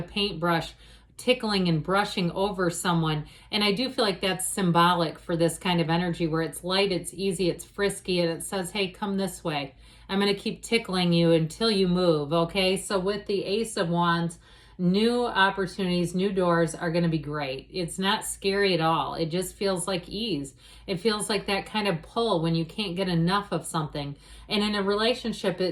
paintbrush tickling and brushing over someone. And I do feel like that's symbolic for this kind of energy where it's light, it's easy, it's frisky, and it says, hey, come this way. I'm going to keep tickling you until you move, okay? So with the Ace of Wands, new opportunities, new doors are going to be great. It's not scary at all. It just feels like ease. It feels like that kind of pull when you can't get enough of something. And in a relationship,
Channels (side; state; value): both; identical; correlation 1.00